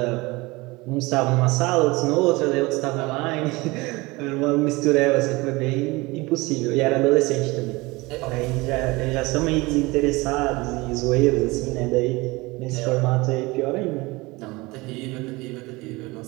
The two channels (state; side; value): quieter; left; 22.9 dB